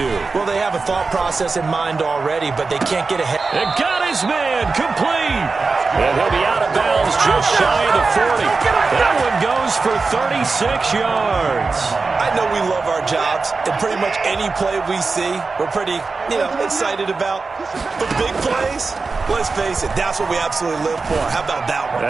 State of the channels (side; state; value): left; quieter; 4.2 dB